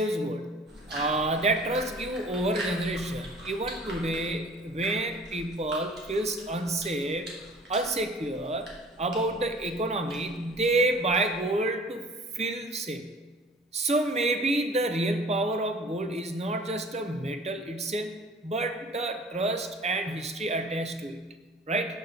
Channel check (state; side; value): normal; both; correlation 0.47